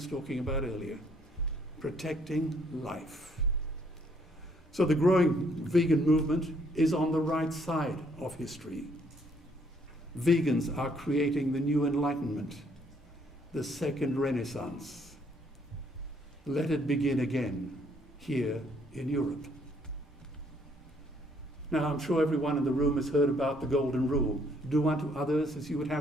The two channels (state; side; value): normal; both; correlation 0.67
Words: talking about earlier, protecting life. So the growing vegan movement is on the right side of history. Vegans are creating the new enlightenment, the second Renaissance. Let it begin again here in Europe. Now, I'm sure everyone in the room has heard about the golden rule. Do unto others as you would